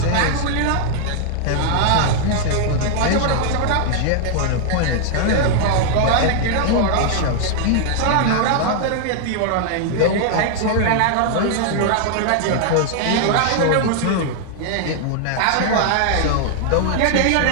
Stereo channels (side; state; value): both; different; correlation -0.01